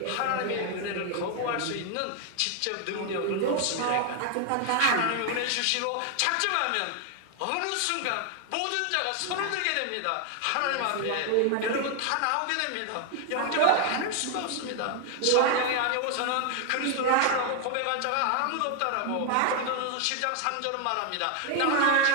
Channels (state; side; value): different; both; correlation 0.00